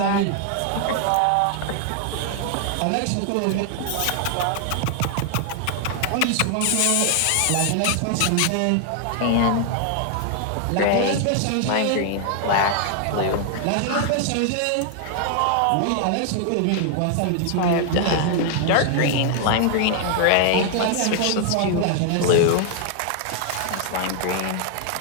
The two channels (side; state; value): both; different; correlation 0.00